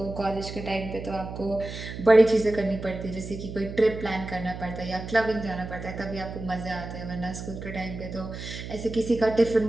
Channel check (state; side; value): noise; right; hum, 9 dB below the sound